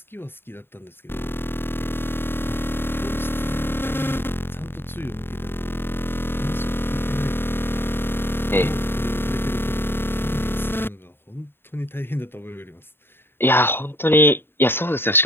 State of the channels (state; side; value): late; right; 0.11 ms